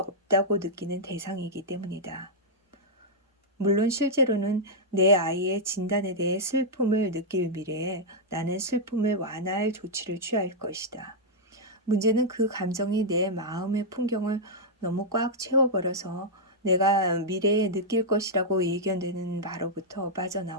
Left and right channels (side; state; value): both; normal; correlation -0.07